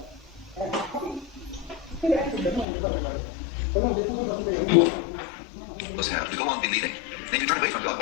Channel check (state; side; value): drops out; right; at 2.7 s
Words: Have to go on in leaving. Then you turn away from God,